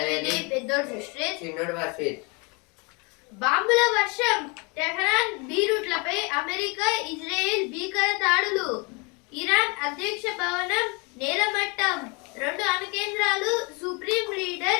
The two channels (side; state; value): right; quieter; 30.5 dB